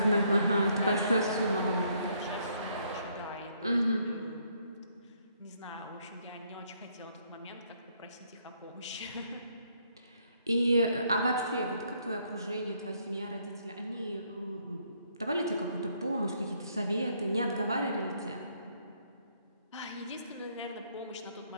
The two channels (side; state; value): both; inverted; correlation -0.70